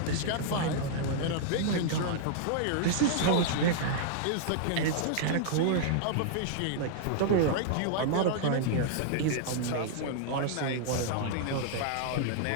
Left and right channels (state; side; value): different; both; correlation -0.01